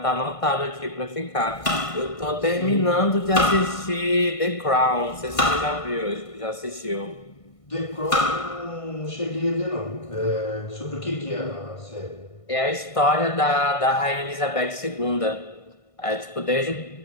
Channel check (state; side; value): late; right; 1.5 ms